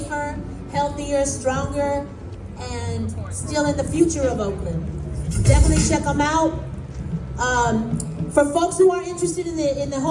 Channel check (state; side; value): identical; both; correlation 1.00